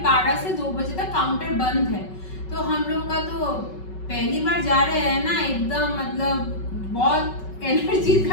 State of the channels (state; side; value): late; right; 5.3 ms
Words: 12 से 2 बजे तक काउंटर बंद है। तो हम लोग का तो पहली बार जा रहे हैं ना, एकदम मतलब बहुत एनर्जी